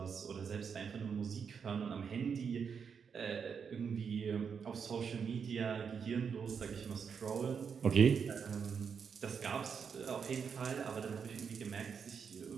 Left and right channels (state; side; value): quieter; left; 6.5 dB